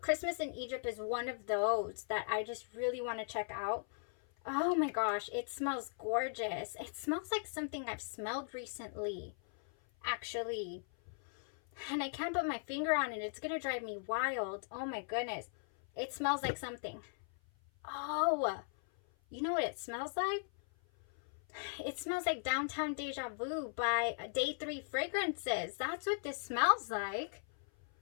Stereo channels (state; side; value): silent; right; 52 dB below the other